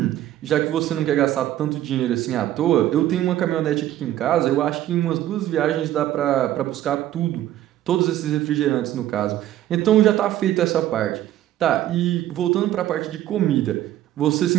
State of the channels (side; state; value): left; quieter; 13.1 dB